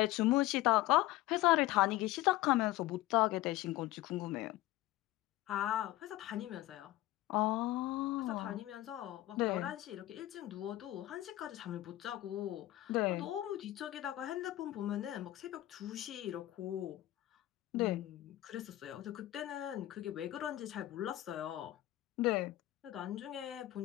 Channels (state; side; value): quieter; right; 16.1 dB